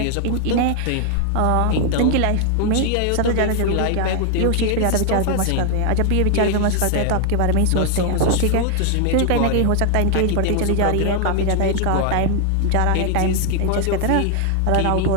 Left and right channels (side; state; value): both; different; correlation 0.00